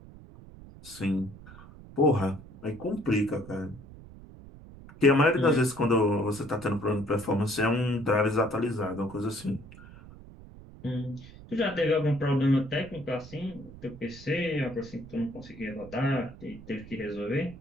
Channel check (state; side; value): noise; right; rumble, 18 dB below the sound